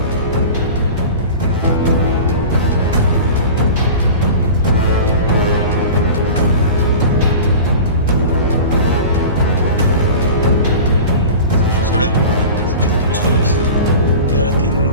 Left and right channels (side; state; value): both; inverted; correlation -0.35